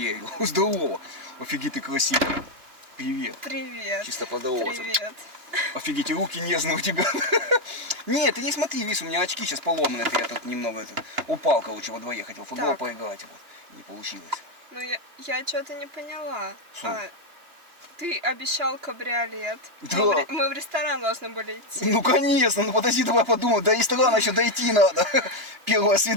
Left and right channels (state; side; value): late; left; 2.7 ms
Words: Здорово. Офигеть, ты красивый. Привет. Привет. Чисто поздороваться. Привет. Офигеть, и руки нежные у тебя. Нет, ты не смотри, видишь, у меня очки сейчас поломаны. Это я тут немного упал, короче, во дворе. Хотел в футбол Так. поиграть. Вот. Не получилось. Ну, я что-то не поняла. Что? Ты обещал кабриолет. Да. Мы в ресторан должны были идти. Ну, конечно, ну подожди, давай подумай. До ресторана еще дойти надо. Первое